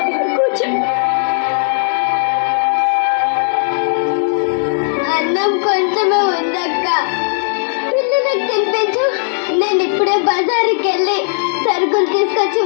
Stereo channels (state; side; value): silent; right; 67 dB below the other